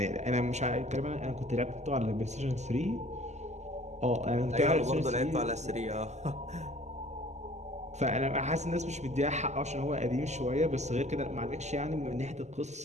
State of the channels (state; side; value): late; left; 0.33 ms